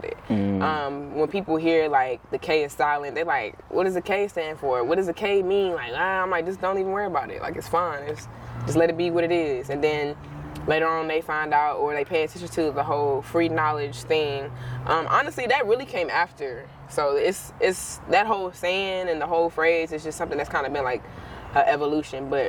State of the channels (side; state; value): both; identical; correlation 1.00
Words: it. When people hear like the K is silent, they're like, what does the K stand for? What does the K mean? Like, I'm like, just don't even worry about it. Like, it's fine. Just let it be what it is. And then later on they find out or they pay attention to the whole free knowledge thing. Honestly, that really came after. So it's that whole saying and the whole phrase is just something that's kind of been like an evolution.